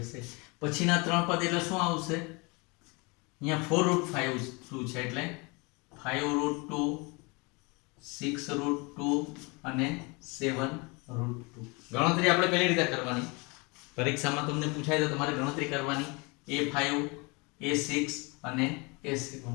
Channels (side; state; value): right; quieter; 28.4 dB